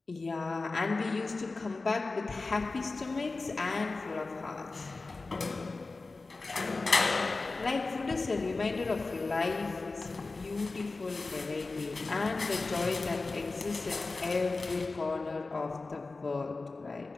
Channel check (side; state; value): right; quieter; 3.6 dB